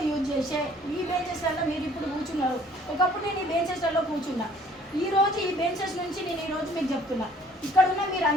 యూజ్ చేసే ఈ బెంచెస్లలో మీరు ఇప్పుడు కూర్చున్నారు. ఒకప్పుడు నేను ఈ బెంచెస్లలో కూర్చున్నా. ఈరోజు ఈ బెంచెస్ నుంచి నేను ఈరోజు మీకు చెప్తున్నా. ఇక్కడ ఉన్న మీరు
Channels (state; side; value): normal; both; correlation 0.56